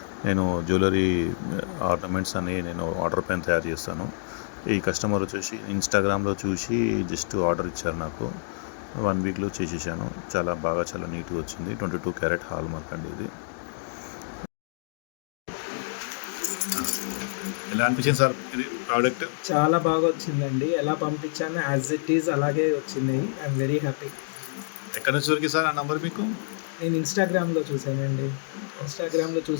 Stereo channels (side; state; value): right; silent; digital silence